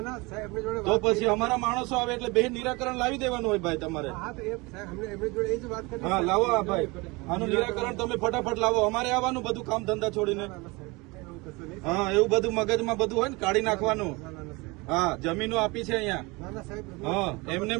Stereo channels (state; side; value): quieter; left; 25.2 dB